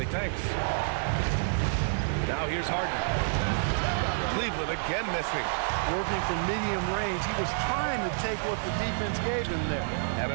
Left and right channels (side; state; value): left; silent; digital silence